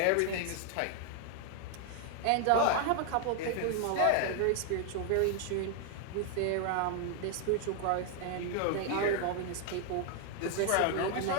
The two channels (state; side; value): different; both; correlation 0.00